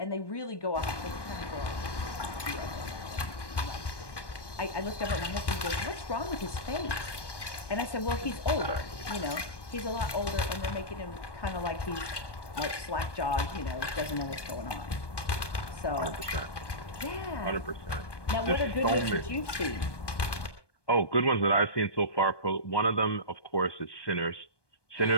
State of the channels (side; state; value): right; late; 1.2 ms